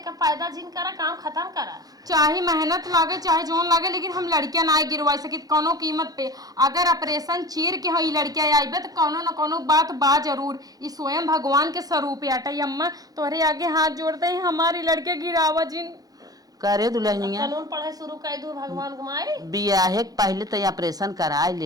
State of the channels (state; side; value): late; left; 0.18 ms